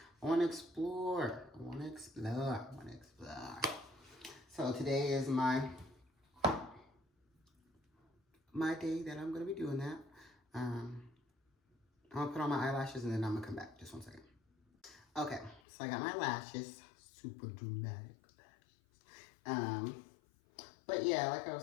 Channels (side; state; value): right; drops out; at 15.6 s